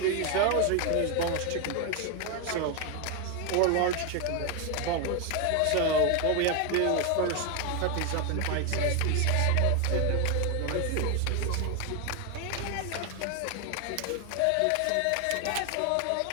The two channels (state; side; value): different; both; correlation 0.01